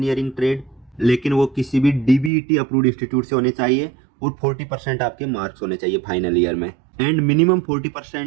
ट्रेड, लेकिन वो किसी भी DBET अप्रूव्ड इंस्टीट्यूट से होने चाहिए। और 40% आपके मार्क्स होने चाहिए फाइनल ईयर में। And minimum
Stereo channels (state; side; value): drops out; left; at 2.3 s